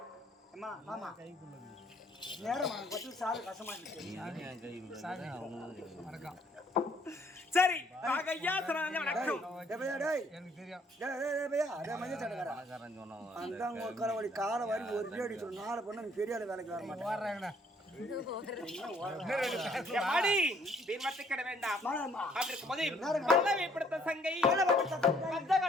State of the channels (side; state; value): both; normal; correlation 0.63